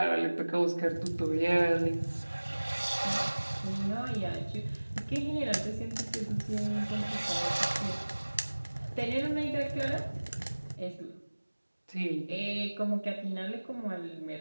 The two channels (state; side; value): inverted; both; correlation -1.00